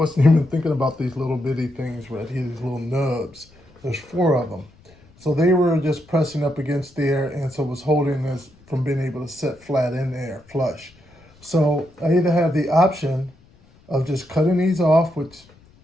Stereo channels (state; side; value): noise; left; rumble, 28 dB below the sound